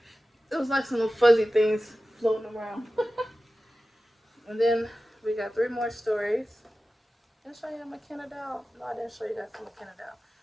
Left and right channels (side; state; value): both; normal; correlation 0.95